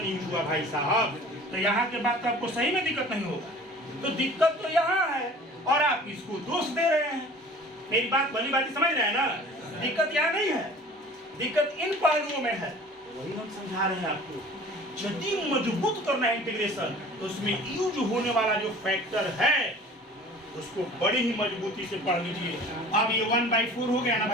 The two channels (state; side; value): normal; both; correlation 0.45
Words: यूज हुआ भाई साहब, तो यहाँ के बाद तो आपको सही में दिक्कत नहीं होगा। तो दिक्कत तो यहाँ है, और आप इसको दोष दे रहे हैं। मेरी बात भली बात समझ रहे हैं ना, दिक्कत यहाँ नहीं है, दिक्कत इन पहलुओं में है। वही हम समझा रहे हैं आपको। यदि मजबूत करना है इंटीग्रेशन, तो उसमें यूज होने वाला जो फैक्टर है उसको बड़ी ही मजबूती से पढ़ लीजिए। अब ये 1/4 हो गया ना